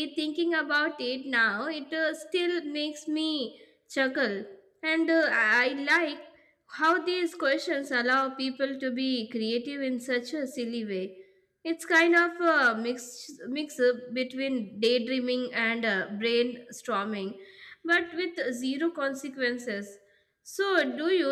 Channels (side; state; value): both; identical; correlation 1.00